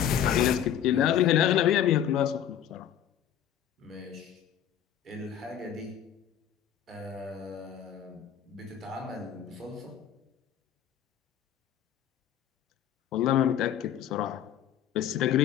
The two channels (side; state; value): right; quieter; 9.8 dB